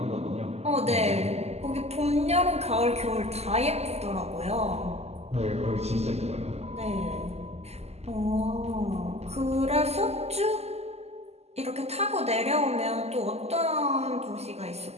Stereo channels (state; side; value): late; left; 0.30 ms